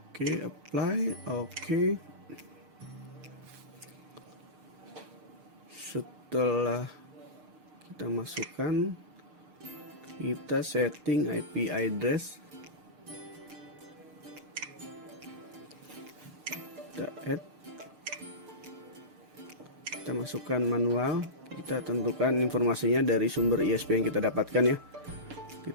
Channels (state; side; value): late; left; 6.7 ms